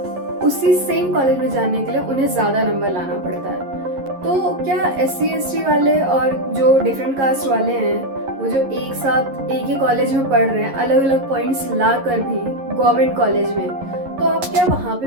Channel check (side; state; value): left; late; 11 ms